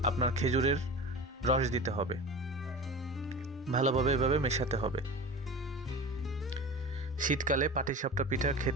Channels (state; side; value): normal; both; correlation 0.32